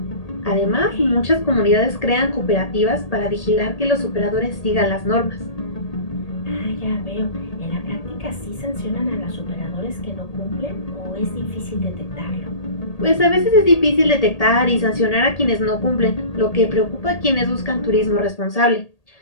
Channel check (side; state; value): right; late; 1.8 ms